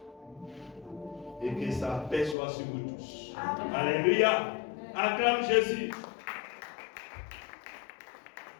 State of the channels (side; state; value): right; drops out; at 2.4 s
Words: et que sa paix soit sur vous tous. Alléluia. Acclame Jésus.